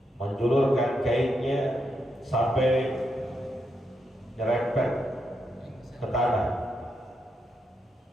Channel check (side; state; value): both; normal; correlation 0.82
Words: menjulurkan kainnya sampai nyerempet ke tanah.